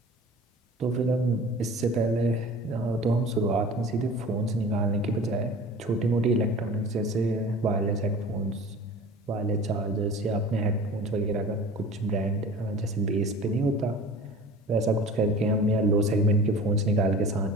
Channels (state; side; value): normal; both; correlation 0.40